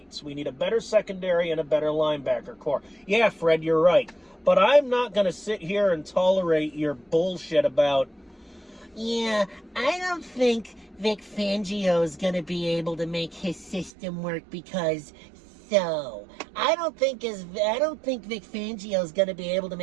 We need a better secondary and a better linebacker core. Yeah, Fred, you're right. But I'm not going to sit here and tolerate your bullshit about... Yeah, I don't think Vic Fangio is going to be able to make his system work because so. I don't think Vic Fangio is going to be able to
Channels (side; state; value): left; drops out; at 13.9 s